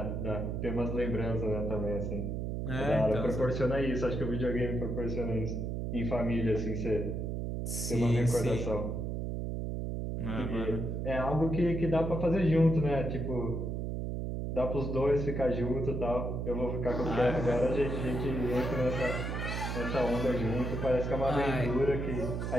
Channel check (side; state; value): right; noise; hum, 2 dB below the sound